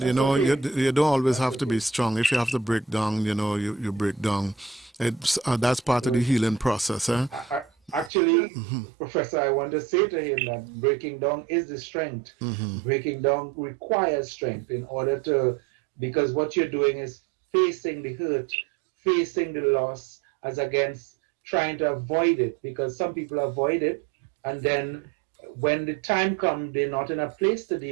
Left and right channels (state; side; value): drops out; left; at 8.1 s